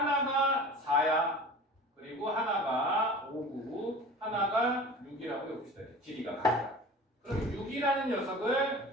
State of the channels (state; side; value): normal; both; correlation 0.38